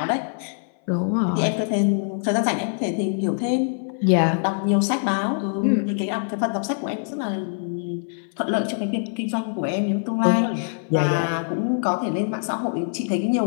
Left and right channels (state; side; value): silent; right; 60 dB below the other